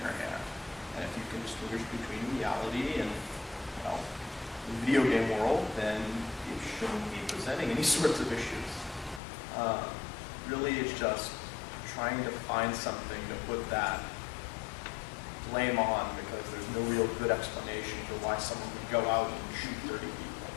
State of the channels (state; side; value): drops out; right; at 9.2 s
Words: hand. And if you can distinguish between reality and, well, the video game world, then it shouldn't be presenting any sorts of issues. Really, it's just trying to find something to put that blame on because there's no real good explanation for why someone would go out and shoot 30 people.